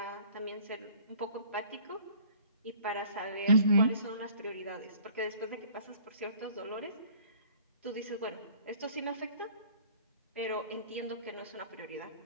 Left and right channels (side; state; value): both; inverted; correlation -0.52